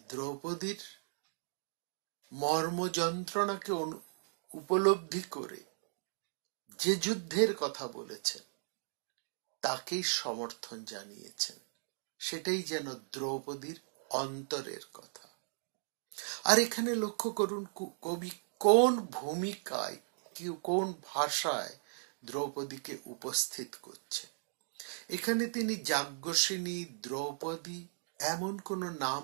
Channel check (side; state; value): left; silent; digital silence